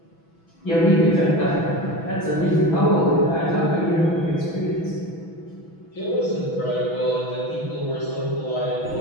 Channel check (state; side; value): late; right; 6.1 ms